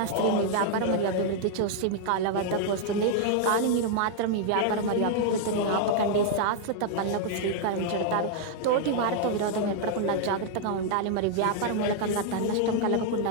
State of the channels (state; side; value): different; both; correlation 0.00